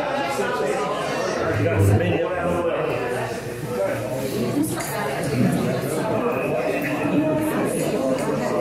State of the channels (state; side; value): noise; right; hum, 23 dB below the sound